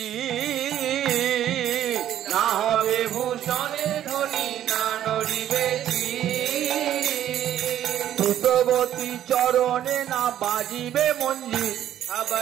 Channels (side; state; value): left; quieter; 11.4 dB